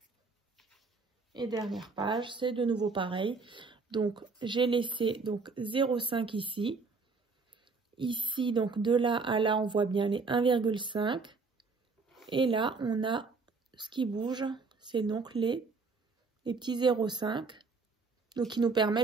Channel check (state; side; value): quieter; left; 4.3 dB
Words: et dernière page, c'est de nouveau pareil. Donc, j'ai laissé donc 0,5 ici. Ici, donc de là à là, on voit bien les 1,5. Et là, on a ce qui bouge. C'est donc les petits 0,5. Donc, qui nous